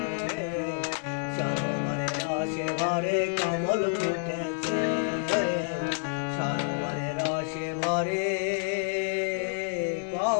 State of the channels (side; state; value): right; silent; digital silence